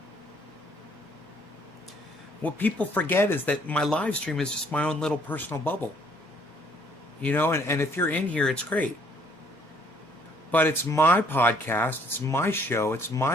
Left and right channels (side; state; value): both; normal; correlation 0.63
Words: What people forget is that my live stream is just my own little personal bubble. You know, and if you're in here, it's great. But it's my podcast, it's my show, it's